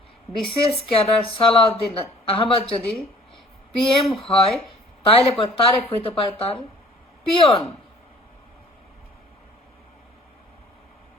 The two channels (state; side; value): normal; both; correlation 0.52